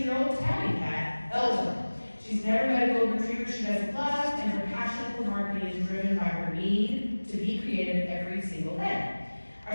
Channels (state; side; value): inverted; both; correlation -1.00